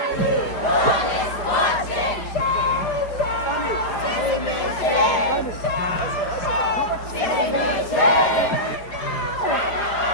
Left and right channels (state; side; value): late; right; 4.6 ms